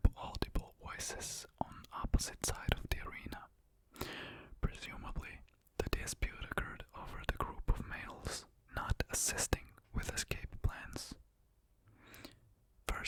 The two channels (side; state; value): both; identical; correlation 1.00